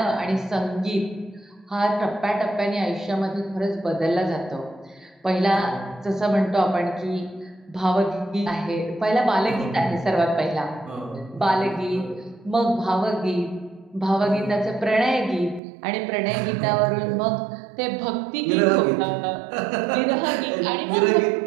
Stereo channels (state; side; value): drops out; left; at 15.6 s